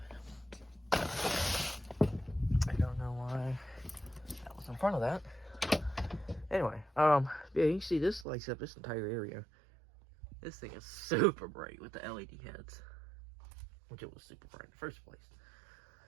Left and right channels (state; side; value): drops out; left; at 8.2 s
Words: I don't know why that was in front of that. Anyway, yeah, you can see this lights up this entire area. This thing is super bright with the LED heads, which it was super bright in the first place.